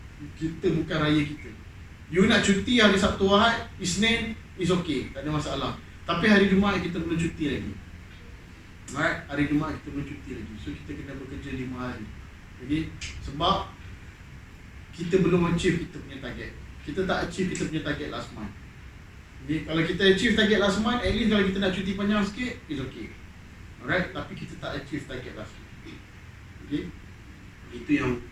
Kita bukan raya kita. You nak cuti hari Sabtu Ahad, Isnin is okay, tak ada masalah. Tapi hari Jumaat kita perlu cuti lagi. Alright, hari Jumaat kita perlu cuti lagi. So kita kena bekerja 5 hari. Okay. Sebab kita belum achieve kita punya target. Kita tak achieve kita punya target last month. Okay. Kalau kita achieve target last month, at least kalau kita nak cuti panjang sikit, is okay. Alright, tapi kita tak achieve target last month. Okay.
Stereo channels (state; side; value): identical; both; correlation 1.00